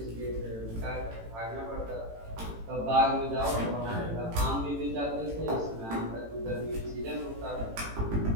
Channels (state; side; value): late; left; 18 ms